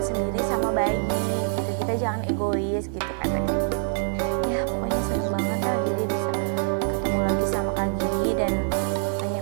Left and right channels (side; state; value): left; silent; 60 dB below the other